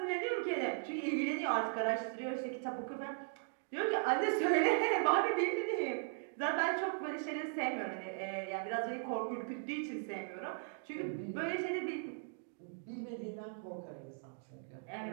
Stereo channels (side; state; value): left; silent; digital silence